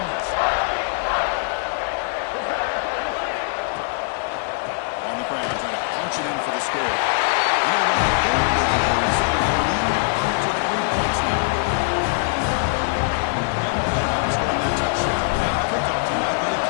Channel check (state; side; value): silent; right; digital silence